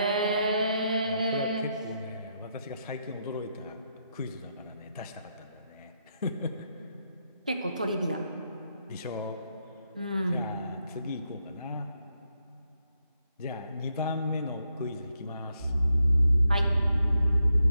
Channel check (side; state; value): both; inverted; correlation -0.81